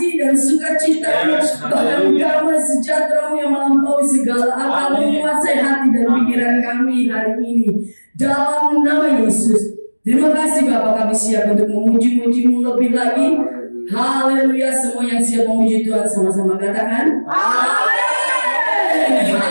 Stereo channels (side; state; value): both; inverted; correlation -1.00